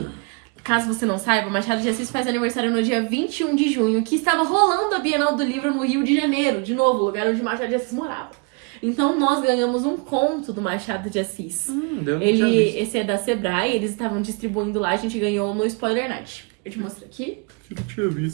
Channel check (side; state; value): left; quieter; 33.6 dB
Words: caso você não saiba, Machado de Assis faz aniversário no dia 21 de junho, que estava rolando a Bienal do Livro no Rio de Janeiro, de novo, lugar onde Machado de Assis morava. Então nós ganhamos um conto do Machado de Assis. Eu não tinha visto. Esse é da Sebrae, eles estavam distribuindo lá, a gente ganhou no Spoiler Night. Eu te mostro aqui. Eu não tinha